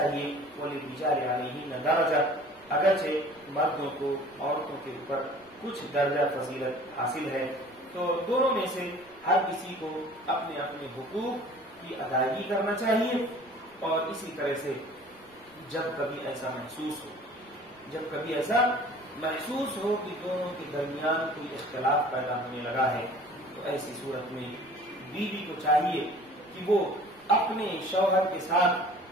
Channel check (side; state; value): right; noise; rumble, 30 dB below the sound